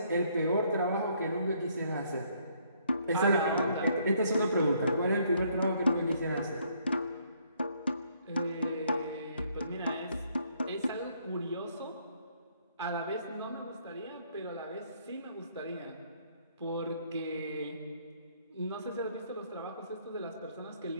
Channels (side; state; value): both; inverted; correlation -0.68